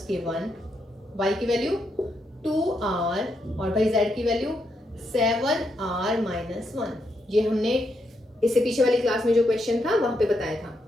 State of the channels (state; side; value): normal; both; correlation 0.80